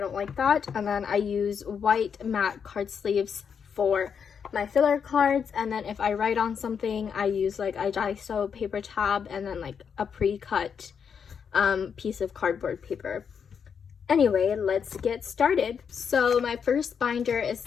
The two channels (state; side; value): quieter; right; 6.9 dB